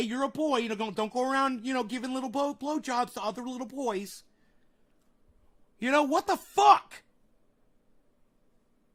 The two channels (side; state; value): both; identical; correlation 1.00